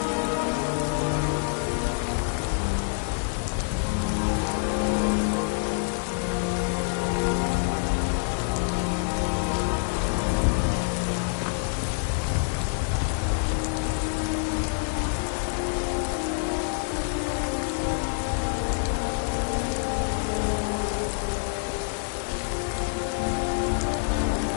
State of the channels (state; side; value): silent; right; 60 dB below the other